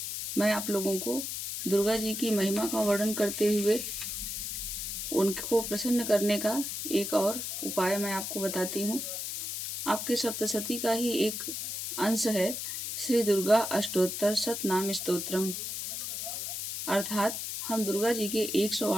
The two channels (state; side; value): noise; left; hiss, 4 dB below the sound